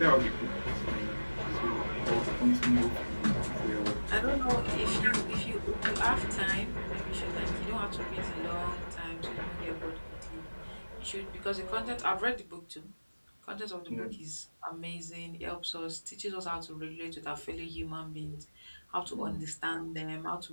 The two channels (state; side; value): inverted; both; correlation -1.00